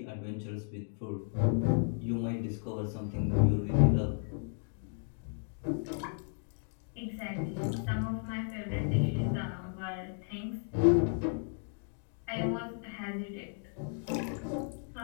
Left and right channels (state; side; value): silent; right; 55 dB below the other